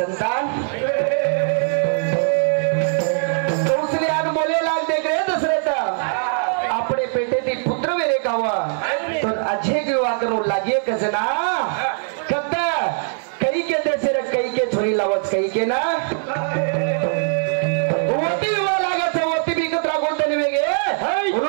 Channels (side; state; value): left; silent; digital silence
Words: तो उसने आग बोले लाग देख रहे दशरथ अपने बेटे दी पुत्र मेरे का हुआ तो अच्छे की हुआ करो लागिए कसना कब कई के देश रे कई के छोरी लावत कई के ना वोटी हुआ लागत है वोटी भी कतरा बोलते नहीं वेगे